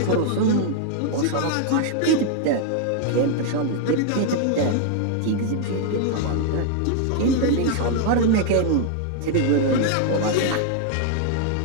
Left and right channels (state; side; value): different; both; correlation 0.00